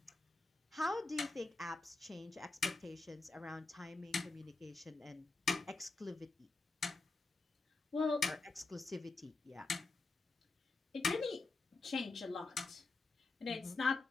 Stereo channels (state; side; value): quieter; right; 3.6 dB